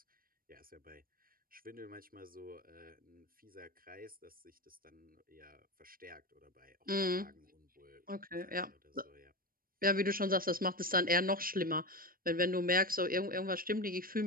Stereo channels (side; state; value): left; late; 0.42 ms